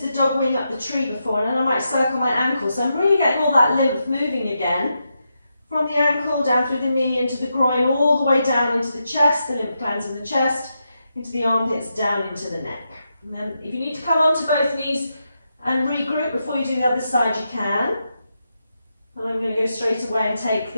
dog wing up the tree before, and then I might circle my ankle. So I'm really getting all that lymph moving again. From the ankle, down through the knee, into the groin, all the way down into the chest, the lymph glands in the chest, into the armpits, down into the neck. And then if you need to come onto both knees and regroup before you do the other side, you can. And I'm going to go straight away and take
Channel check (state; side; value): inverted; both; correlation -0.85